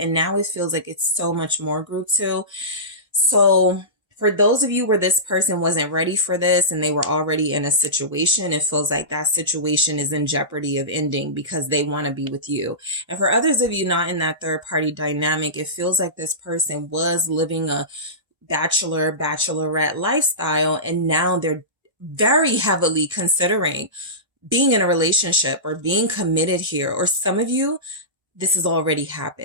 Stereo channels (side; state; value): left; late; 1.3 ms